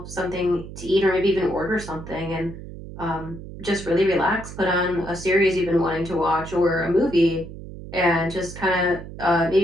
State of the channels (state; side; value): noise; right; hum, 12 dB below the sound